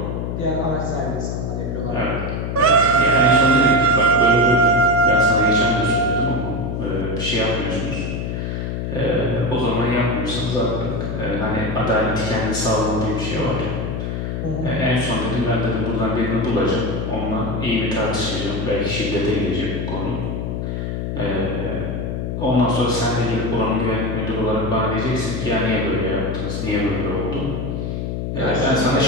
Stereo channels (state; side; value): noise; left; hum, 3 dB below the sound